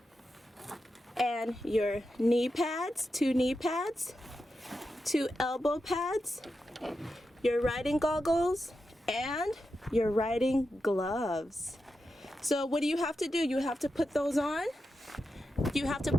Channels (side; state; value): both; normal; correlation 0.89